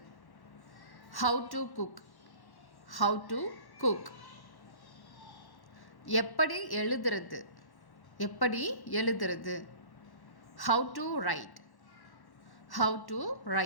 How to cook, how to cook. எப்படி எழுதுறது, எப்படி எழுதுறது. How to write, how to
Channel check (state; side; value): late; right; 1.1 ms